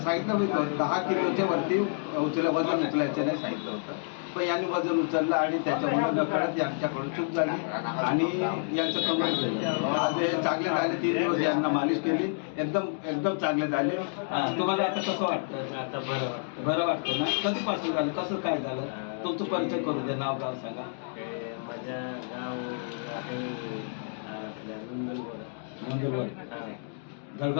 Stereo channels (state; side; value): silent; right; digital silence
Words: होतं 10 किलोच्या वरती वजन उचलायचं नाही सांगितलं होतं पण यांनी वजन उचललं आणि त्याच्यामुळे नकळत यांच्याकडून चूक झाली आणि यांचं कमर झालं. आज हे चांगले झाले 3 दिवस यांना मालिश केली एकदम चांगले झाले. तुम्हाला आता कसं वाटतं? आता बरं वाटतं ना? कधीपासून झालं कसं काय झालं तुमचं परिचय करू दे नाव गाव सांगा. माझ्या गाव आहे आपल्या नंदुरबार